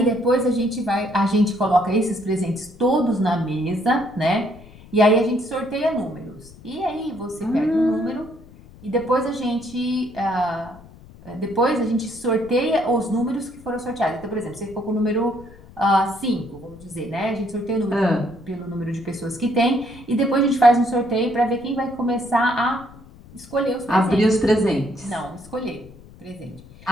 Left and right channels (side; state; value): left; noise; rumble, 21 dB below the sound